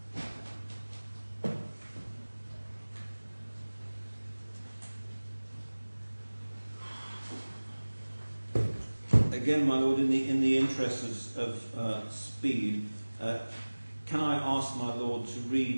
Lord. Again, my Lord, in the interest of speed, can I ask my Lord to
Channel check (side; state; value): both; inverted; correlation -1.00